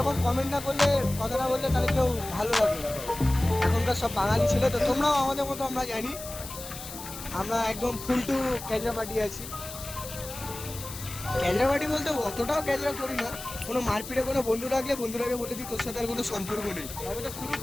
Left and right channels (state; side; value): noise; left; hiss, 11 dB below the sound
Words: কমেন্ট না করলে, কথা না বললে, তাহলে কেউ ভালো লাগবে না। এখনকার সব বাঙালি ছেলে তো, তোমরাও আমাদের মতো, আমরা জানি। আমরা একদম ফুল টু ক্যাজরা পার্টি আছি। ক্যাজরা পার্টি বলতে অতটাও ক্যাজরা করি না, কোনো মারপিটে কোনো বন্ধু রাখলে বন্ধুরাকে বলে দিই তোর সাথে আর কোনো সম্পর্ক নেই। তবে তো শুরু